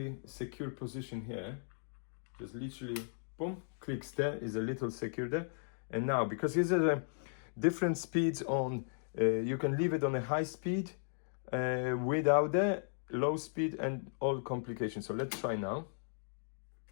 secure position here. Just literally, boom, clicks there, is a little secure there. And now, because these are different speeds on, you can leave it on a high speed without the low speed and all complications. So let's try now.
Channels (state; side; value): silent; right; digital silence